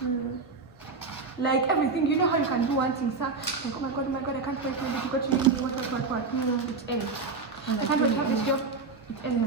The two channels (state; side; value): quieter; left; 4.3 dB